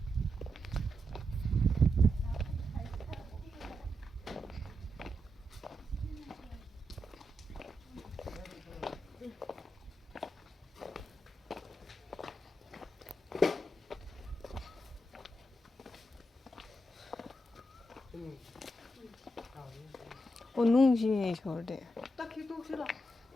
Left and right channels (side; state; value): both; normal; correlation 0.85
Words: 오 농지네 저래. 딱 기도 싫어.